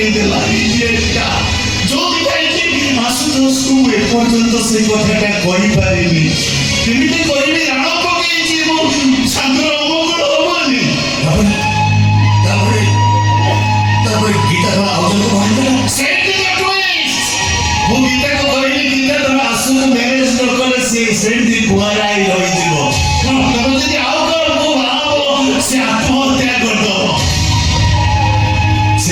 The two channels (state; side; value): identical; both; correlation 1.00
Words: ଯୋଉଥିପାଇଁ ଆଶୁତୋଷକୁ ଏପର୍ଯ୍ୟନ୍ତ ସେ କଥାଟା କହିପାରିନି। କେମିତି କହିବି? ରାଣ ପକେଇଛି, ମୋ ସାଙ୍ଗର ଅମଙ୍ଗଳ ହବନି। ତାପରେ ଗୀତା କଣ ଆଉ ଜଣକୁ ବାହାରିଥିଲା? ସେଇଠି ତ twist। ମୁଁ ଗୀତାକୁ କହିଲି, ଗୀତା ତମେ ଆସୁନ ମ୍ୟାରେଜ ନ କଲେ ସେ ସେମିତି କୁଆରା ହେଇ ରହିଯିବ। ତମେ ଯଦି ଆଉ କାହାକୁ ବାହାହବ ସେ ଆତ୍ମହତ୍ୟା କରିଦବ। ସେ